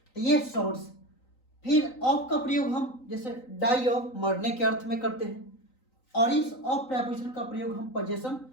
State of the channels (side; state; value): right; late; 3.9 ms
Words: तो ये सोर्स। फिर ऑफ का प्रयोग हम जैसे डाई ऑफ, मरने के अर्थ में करते हैं। और इस ऑफ प्रेपोजिशन का प्रयोग हम पोजेशन